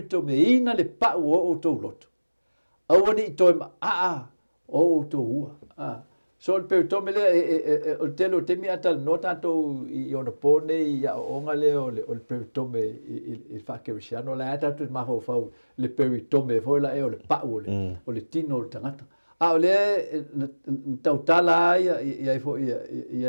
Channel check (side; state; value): both; inverted; correlation -1.00